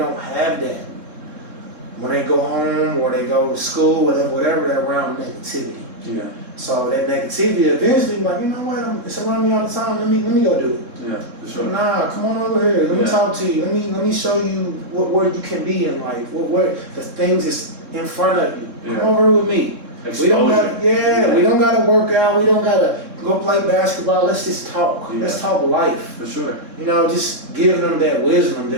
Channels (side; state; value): left; late; 3.7 ms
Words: have that. When they go home or they go to school, whatever, they're around negativity. Yeah. So that negativity eventually, you know what? It's around me all the time. Let me go do it. Yeah, for sure. Nah, come on over here. Let me talk to you. Let me show you where you can be in life. Where the things that's in front of you. Yeah. Come over with me. Exposure. We don't got we don't gotta work out. We don't gotta go play basketball. Let's just talk. Yeah. Let's talk life. For sure. Just give them that wisdom